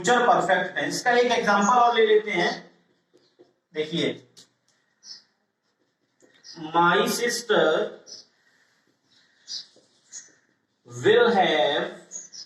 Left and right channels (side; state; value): both; identical; correlation 1.00